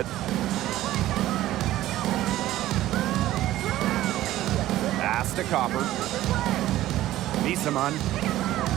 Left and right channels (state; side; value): quieter; left; 14.6 dB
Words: Pass to Copper. Misamon.